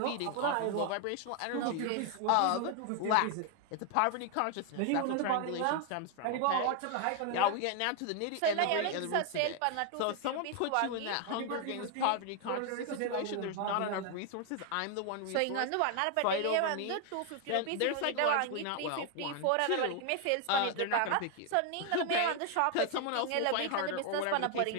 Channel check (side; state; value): both; different; correlation 0.01